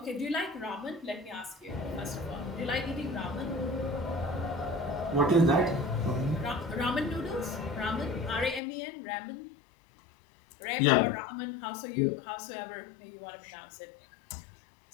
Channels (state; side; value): drops out; right; at 8.6 s